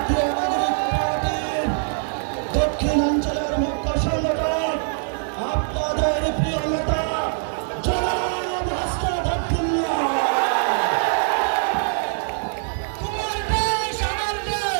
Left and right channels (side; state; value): left; silent; digital silence